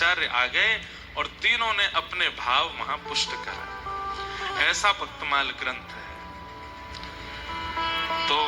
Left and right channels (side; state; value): both; identical; correlation 1.00